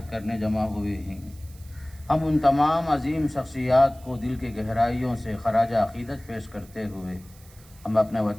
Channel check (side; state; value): right; noise; hiss, 25 dB below the sound